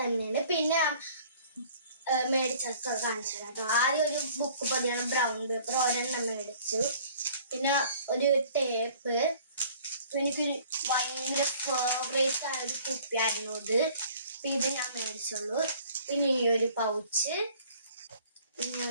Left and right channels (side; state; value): both; inverted; correlation -0.53